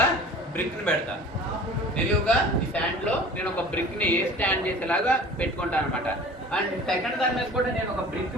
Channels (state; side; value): normal; both; correlation 0.44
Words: పెడతా. నిలువుగా ఈ స్టాండ్ లో నేను ఒక బ్రిక్ ని స్టాండ్ చేసేలాగా పెట్టుకుంటాను అనమాట. అండ్ సెకండ్ దాని మీద కూడా నేను ఒక బ్రిక్